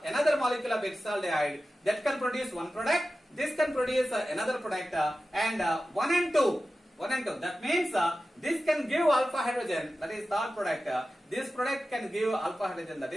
molecule of acetaldehyde, that can produce one product. This can produce another product, and 1 and 2. That means this can give alpha hydrogen, that is third product. This product can give alpha hydrogen, that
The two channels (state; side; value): normal; both; correlation 0.94